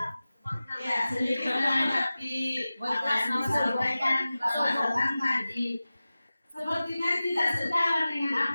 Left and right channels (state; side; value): inverted; both; correlation -0.96